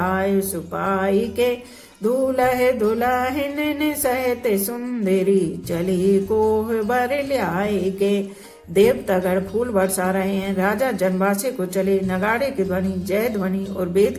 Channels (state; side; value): identical; both; correlation 1.00